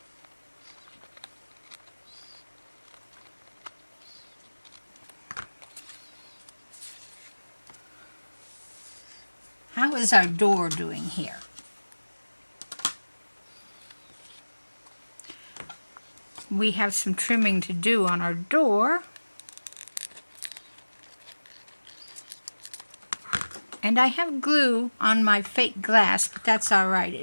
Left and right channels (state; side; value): inverted; both; correlation -1.00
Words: How is our door doing here? We have some trimming to do on our door. And I have glue on my fake glass, but that's all right.